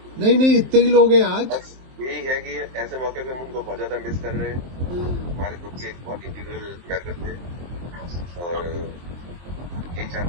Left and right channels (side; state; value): left; late; 23 ms